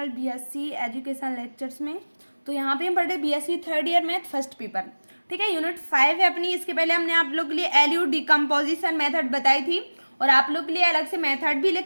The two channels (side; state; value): both; inverted; correlation -1.00